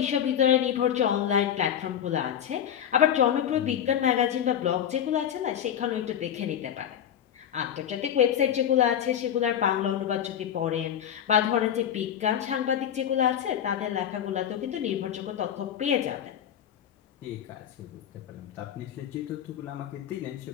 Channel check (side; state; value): right; quieter; 9.6 dB